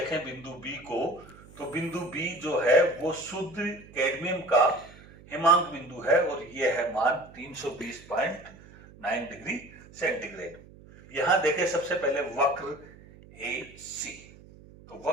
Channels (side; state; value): right; noise; hum, 21 dB below the sound